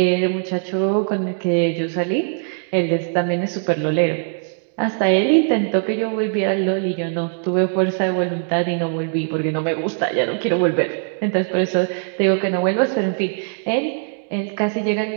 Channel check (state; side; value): silent; left; digital silence